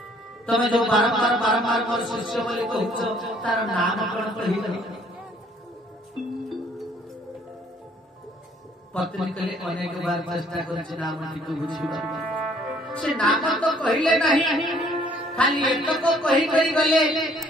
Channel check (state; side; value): normal; both; correlation 0.61